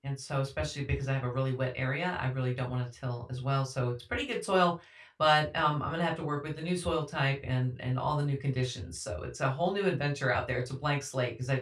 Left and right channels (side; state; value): both; identical; correlation 1.00